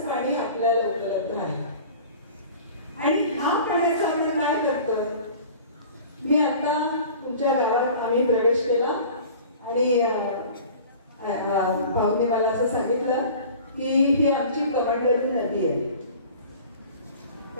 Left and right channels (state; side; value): inverted; both; correlation -0.43